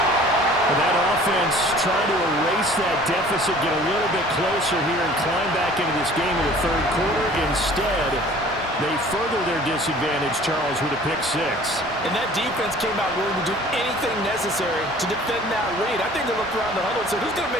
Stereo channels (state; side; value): normal; both; correlation 0.49